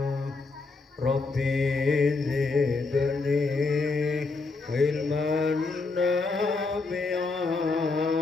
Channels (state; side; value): quieter; right; 3.9 dB